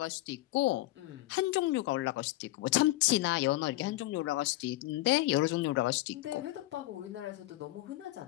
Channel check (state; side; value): quieter; right; 17.6 dB